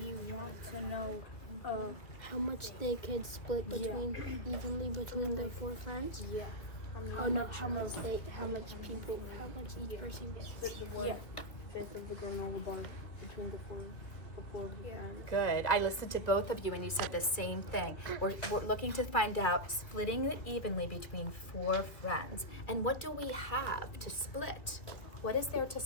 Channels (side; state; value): right; late; 2.4 ms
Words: want to know How much they could split evenly between their 4 friends? yeah. How much each person gets? Yeah. 1/5 of the granola bar between the four friends. Good. I listened to both of you and you said the same thing. We're looking to find out splitting it evenly between 4 friends. And what do we have to split? What is there to